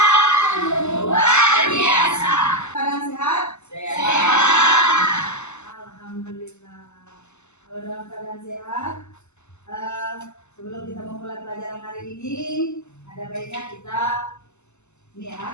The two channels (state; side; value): late; right; 0.82 ms